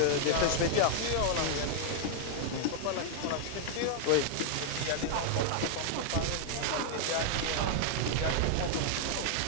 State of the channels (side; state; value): both; different; correlation 0.00